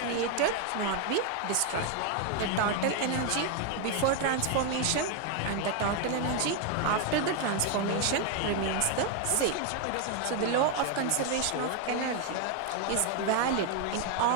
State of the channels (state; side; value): different; both; correlation 0.01